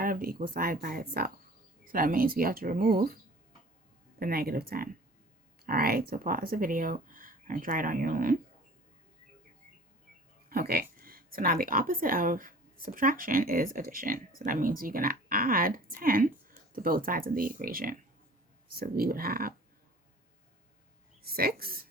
of the equal side by itself. So that means we have to remove the negative 10. All right, so pause the video and try it on your own. Okay, so now the opposite of subtraction is addition. So that means you're going to add 10 to both sides of the equation. So we would have 6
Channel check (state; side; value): normal; both; correlation 0.46